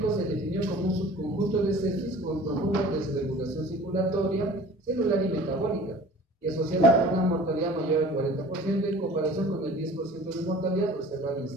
se definió como un subconjunto de sepsis con profunda desregulación circulatoria, celular y metabólica, y asociado con una mortalidad mayor al 40% en comparación con el 10% de mortalidad observada en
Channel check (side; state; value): both; normal; correlation 0.45